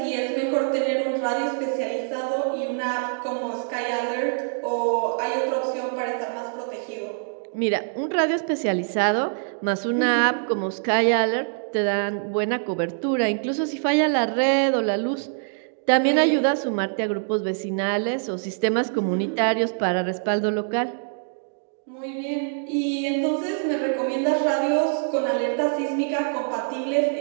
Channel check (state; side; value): silent; left; digital silence